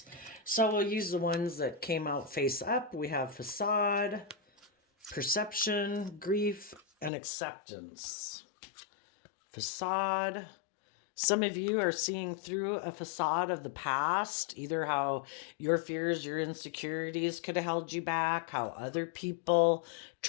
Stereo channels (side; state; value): right; drops out; at 7.1 s